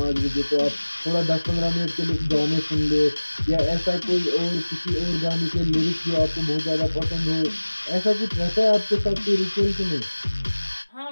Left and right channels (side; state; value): both; inverted; correlation -1.00